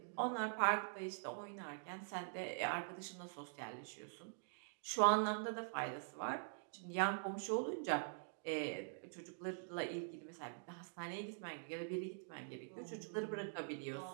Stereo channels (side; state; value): left; silent; digital silence